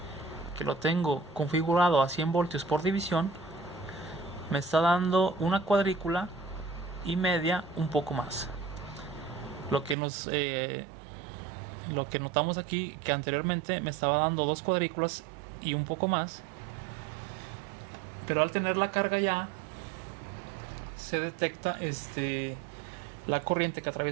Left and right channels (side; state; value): left; drops out; at 10.0 s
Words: que lo tengo configurado a 100 voltios por división, me está dando una cuadrícula y media, un poco más. Lo que notamos aquí, que anteriormente me estaba dando 2 cuadrículas y un poco más, pero al tener la carga ya se detecta la corriente que